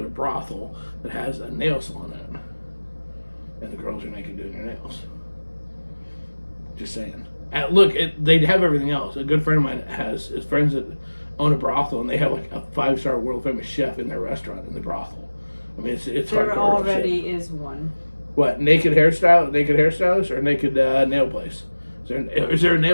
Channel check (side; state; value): both; inverted; correlation -1.00